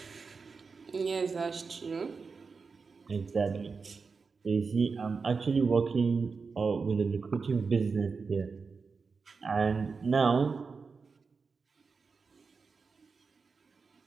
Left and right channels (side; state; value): left; quieter; 4.9 dB